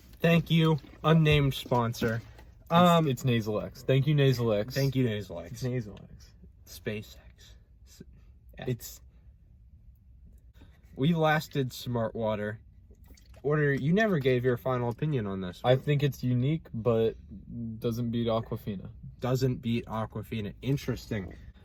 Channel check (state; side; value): identical; both; correlation 1.00